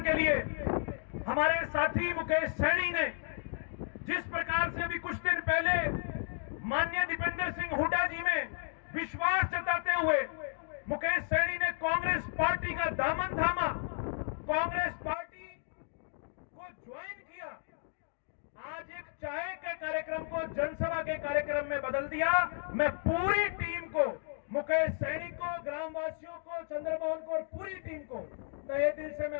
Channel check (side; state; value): right; silent; 55 dB below the other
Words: के लिए। हमारे साथी मुकेश सैनी ने जिस प्रकार से अभी कुछ दिन पहले माननीय दीपेंद्र सिंह हुड्डा जी में विश्वास जताते हुए मुकेश सैनी ने कांग्रेस पार्टी का दामन थामा, कांग्रेस पार्टी को ज्वाइन किया, आज एक चाय के कार्यक्रम को जनसभा के कार्यक्रम में बदल दिया। मैं पूरी टीम को, मुकेश सैनी को, ग्रामवासियों को, चंद्रमोहन को और पूरी टीम को तहे दिल से